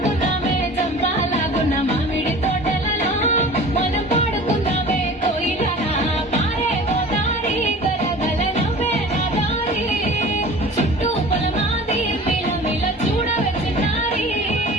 చంపాలాగున్న మామిడి తోటలలో, మనం పాడుకున్నామే కోయిలల. పారే గోదారి గలగల నవ్వే నా దారి, చుట్టూ పొలమాది మిల మిల చూడవే చిన్నారి.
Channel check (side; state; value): both; normal; correlation 0.41